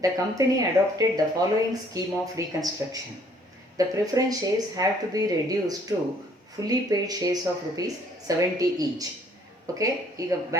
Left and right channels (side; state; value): both; normal; correlation 0.61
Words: the company adopted the following scheme of reconstruction. The preference shares have to be reduced to fully paid shares of rupees 70 each. Okay, ಈಗ